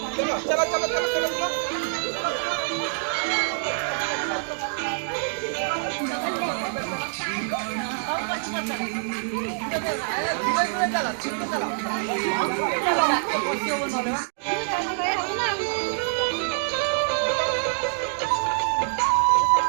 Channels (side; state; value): left; silent; digital silence